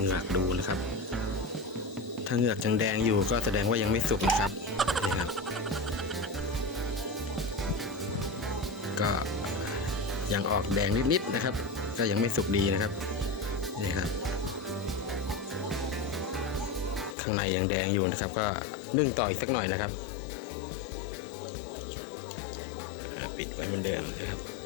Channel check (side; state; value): right; drops out; at 17.2 s